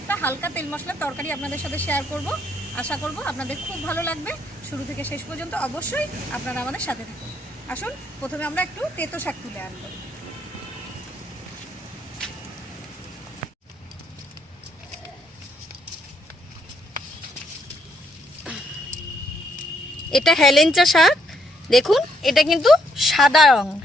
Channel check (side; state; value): both; normal; correlation 0.72